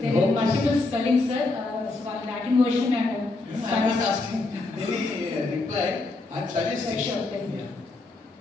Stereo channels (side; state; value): right; quieter; 3.3 dB